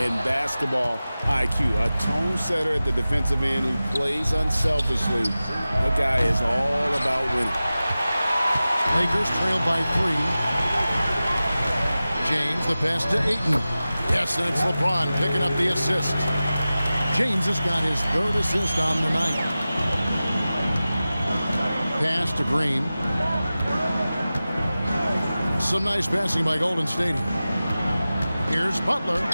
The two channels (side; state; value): both; inverted; correlation -0.96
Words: and basketball IQ. A tone setter at the defensive end who plays unselfishly. That guy is all about winning. Lakers trail by 3. James, the pass to Ayton. Yes, and it's LeBron picking up the assist. James has got his 3rd assist on the night. Pass to Green. Some nice passing by Golden State. Here's Butler.